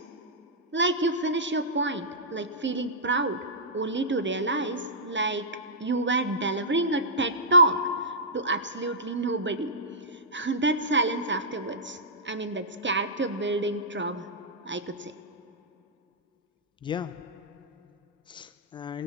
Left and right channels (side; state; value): both; normal; correlation -0.14